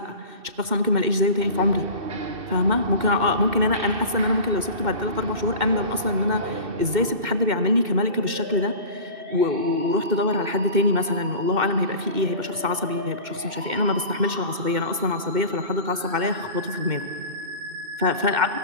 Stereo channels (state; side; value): late; left; 2.1 ms